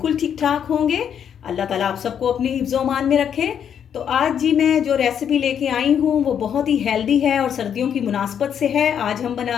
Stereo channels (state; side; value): quieter; right; 8.5 dB